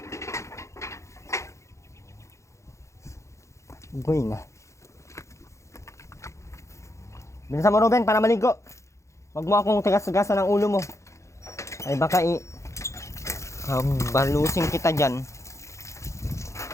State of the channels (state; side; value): late; right; 0.14 ms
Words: Going ah. Bilisan mo, Ruben, para maligo. Wag mo akong tigas-tigasan ng ulo mo. Ay baka balusin kita dyan.